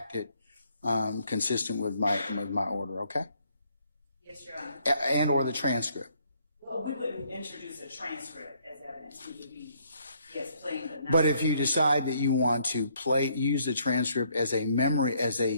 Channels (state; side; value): inverted; both; correlation -0.68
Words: it consistent with my order. Okay. Yes, Your Honor. And or the transcript. Well, we wouldn't introduce a transcript as evidence. We would be, yes, playing the. But if you decide that you want to use the transcript as a memory, as